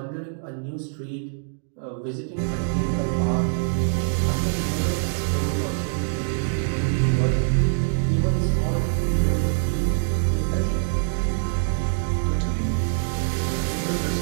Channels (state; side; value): silent; left; digital silence